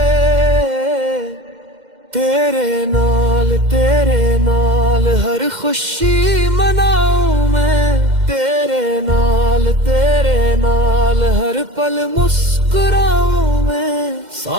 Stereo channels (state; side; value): late; left; 2.1 ms